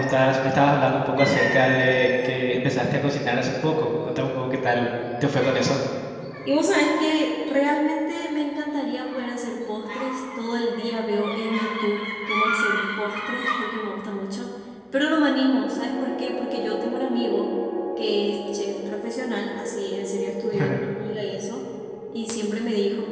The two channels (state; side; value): identical; both; correlation 1.00